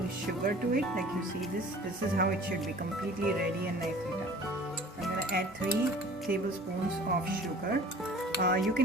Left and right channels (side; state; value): both; normal; correlation 0.46